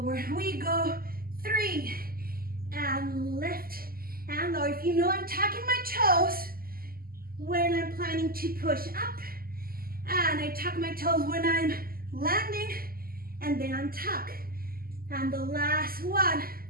We go 3 and lift and lower. If you know I'm tucking my toes when I'm planning to push up, and I tuck my toes when I'm landing, and then untuck. And the last one.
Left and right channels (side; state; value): left; late; 0.43 ms